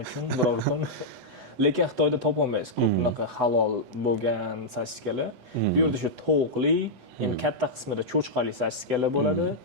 uchun biror kun. Lekin Xitoyda topolmaysiz ko'p bunaqa halol bo'lgan sosiskalar. Bu yerda shu tovuqli, endi katta qismida cho'chqali sosiskalar bo'ladi.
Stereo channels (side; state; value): left; late; 8.0 ms